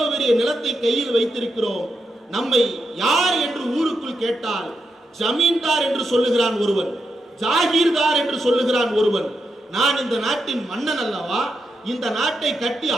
பெரிய நிலத்தை கையில் வைத்திருக்கிறோம், நம்மை யார் என்று ஊருக்குள் கேட்டால் ஜமீன்தார் என்று சொல்லுகிறான் ஒருவன், ஜாகீர்தார் என்று சொல்லுகிறான் ஒருவன். நான் இந்த நாட்டின் மன்னன் அல்லவா, இந்த நாட்டை கட்டி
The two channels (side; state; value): both; normal; correlation 0.85